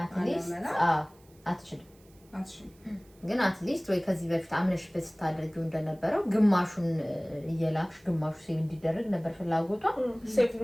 አትሊስት አትችልም። ግን አትሊስት ወይ ከዚህ በፊት አምነሽበት ስታደርጊው እንደነበረው ግማሹን እየላክሽ ግማሹ ሴቭ እንዲደረግ ነበር ፍላጎቷ። ሴቭ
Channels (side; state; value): right; noise; hiss, 30 dB below the sound